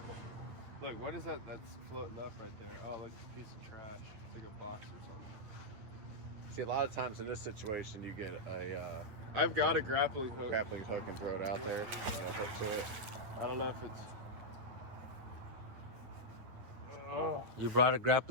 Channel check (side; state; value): left; late; 9.6 ms